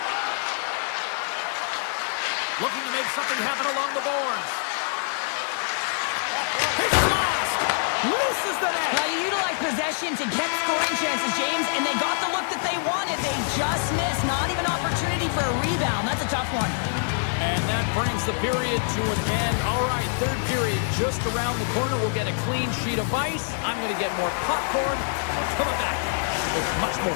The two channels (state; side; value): silent; right; digital silence